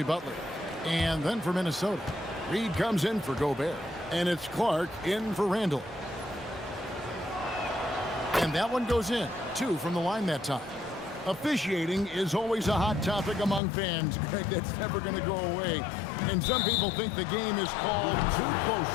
Butler. And then for Minnesota, Reed comes in for Gobert. And it's Clark in for Randall. And that one goes in. 2 from the line that time. Officiating is always a hot topic among fans, Greg. That's never going to go away. And some people think the game is called too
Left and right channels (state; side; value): drops out; right; at 13.6 s